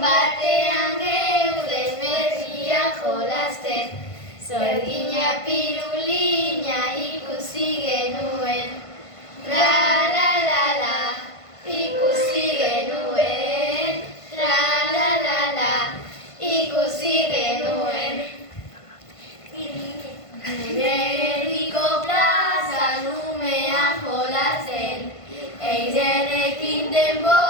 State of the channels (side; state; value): right; late; 1.5 ms